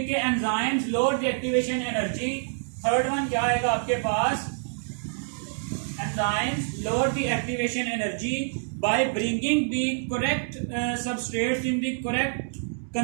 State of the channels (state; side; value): silent; left; digital silence